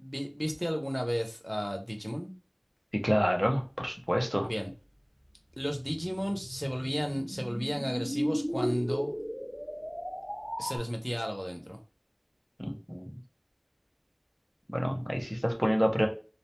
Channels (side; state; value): both; identical; correlation 1.00